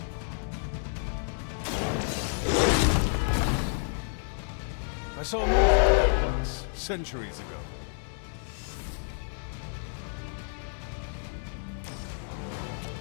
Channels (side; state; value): right; silent; 58 dB below the other